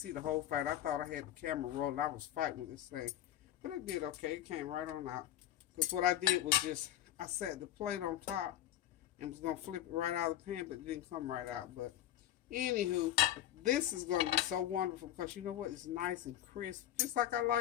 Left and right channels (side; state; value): right; quieter; 12.4 dB